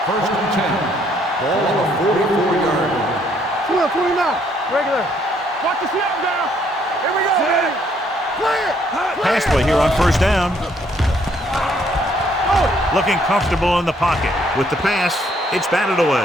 1st and 10. Ball on the 44-yard line. 29. Regular. Watch the snap down. Here we go. Play it. Pass play here on 1st down. Looking comfortable in the pocket. With the pass, it's batted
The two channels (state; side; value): normal; both; correlation 0.68